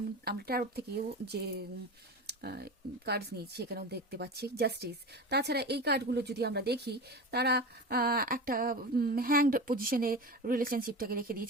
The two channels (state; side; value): normal; both; correlation 0.28